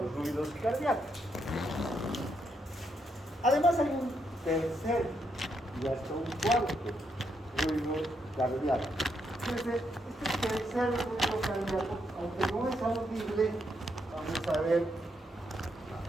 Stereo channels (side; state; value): both; normal; correlation 0.78